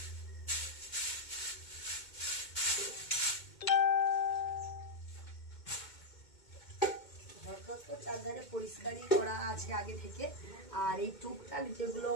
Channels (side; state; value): right; late; 2.2 ms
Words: ঘরদোর তো চারধারে পরিষ্কারই করা আছে আগে থেকে। আর এই টুকটাক যেগুলো